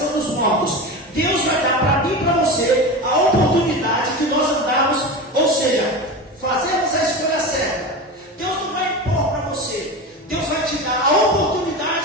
dos mortos. Deus vai dar para mim e para você a oportunidade de nós andarmos, ou seja, fazermos a escolha certa. Deus não vai impor para você, Deus vai te dar a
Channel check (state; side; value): normal; both; correlation 0.25